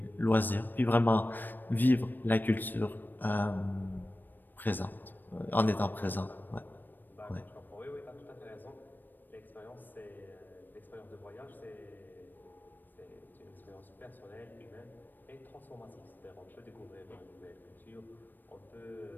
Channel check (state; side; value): late; right; 0.091 ms